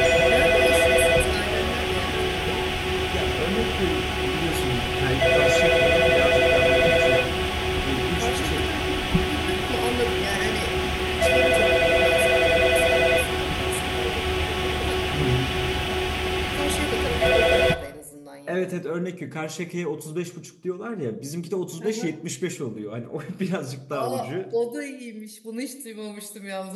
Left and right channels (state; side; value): identical; both; correlation 1.00